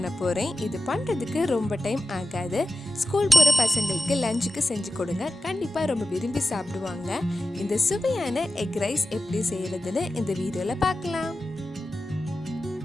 போகிறேன். இது பண்ணுறதுக்கு ரொம்ப டைம் ஆகாது. ஸ்கூல் போகிற பசங்களுக்கு லஞ்சுக்கு செஞ்சு கொடுங்க, கண்டிப்பாக ரொம்ப விரும்பி சாப்பிடுவாங்க. இந்த சுவையான எக் ரைஸ் எப்படி செய்கிறதுன்னு இந்த வீடியோவில் பார்க்கலாம்.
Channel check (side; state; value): both; normal; correlation 0.93